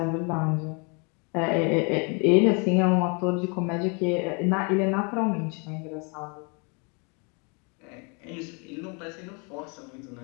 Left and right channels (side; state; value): right; quieter; 33.8 dB